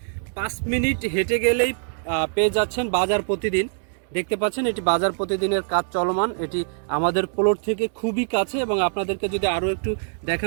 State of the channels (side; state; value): left; silent; digital silence